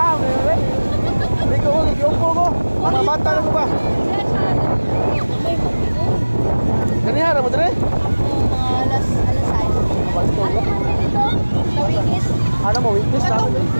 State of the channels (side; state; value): both; inverted; correlation -1.00